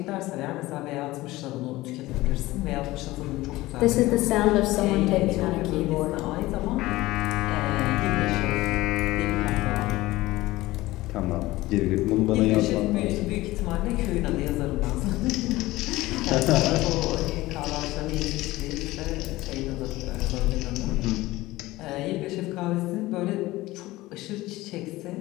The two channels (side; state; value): right; quieter; 18.4 dB